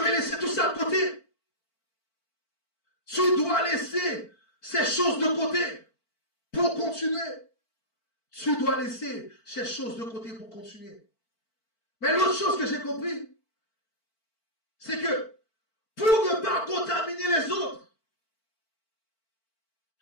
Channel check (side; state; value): right; late; 4.5 ms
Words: laisser tout ça de côté. Tu dois laisser ces choses de côté pour continuer. Tu dois laisser ces choses de côté pour continuer. Mais l'autre chose que j'ai compris, c'est que pour ne pas contaminer les autres,